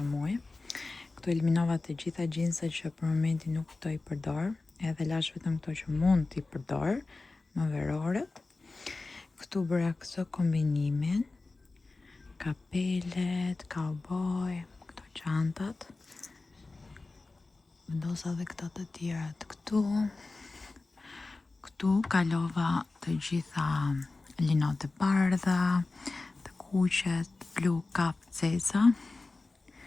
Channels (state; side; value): quieter; right; 3.5 dB